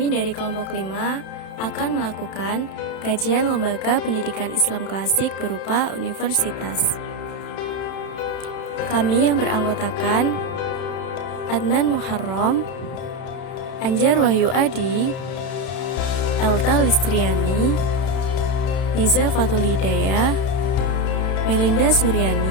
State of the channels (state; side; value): late; right; 31 ms